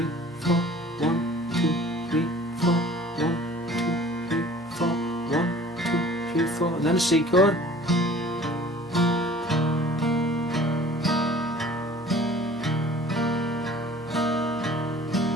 4, 1, 2, 3, 4, 1, 2, 3, 4, 1, 2, 3, 4, and then a C chord.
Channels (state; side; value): normal; both; correlation 0.48